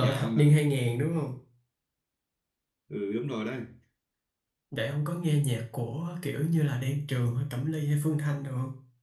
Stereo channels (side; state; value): both; identical; correlation 1.00